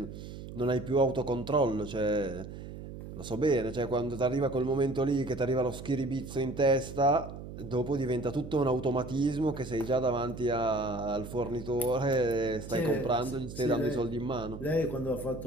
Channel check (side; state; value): right; noise; hum, 11 dB below the sound